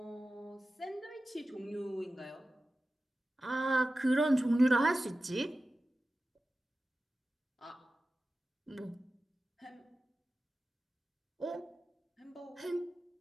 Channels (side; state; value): both; normal; correlation 0.95